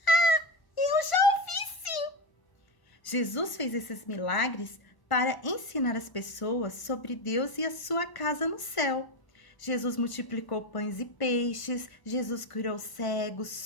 Eu já ouvi, sim. Jesus fez esses milagres para ensinar as pessoas sobre Deus e a sua casa no céu. Jesus multiplicou pães e peixes, Jesus curou cegos,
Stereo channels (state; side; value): late; right; 1.5 ms